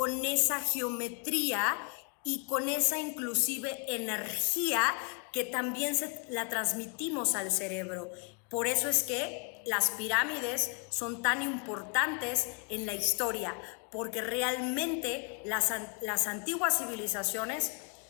esa geometría y con esa inclusive energía que también la transmitimos al cerebro. Por eso es que las pirámides son tan importantes en la historia, porque realmente las antiguas civilizaciones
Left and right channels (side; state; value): right; quieter; 35.0 dB